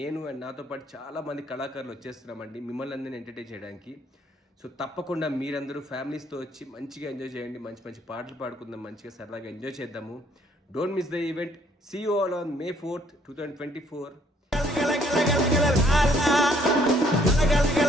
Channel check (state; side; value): normal; both; correlation 0.64